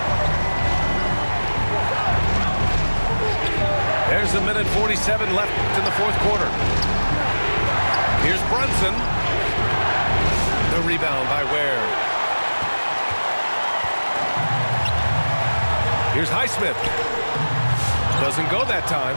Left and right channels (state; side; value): inverted; both; correlation -1.00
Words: There's a minute 47 left in the fourth quarter. Here's Brunson. The rebound by Ware. Here's Highsmith. Doesn't go that time.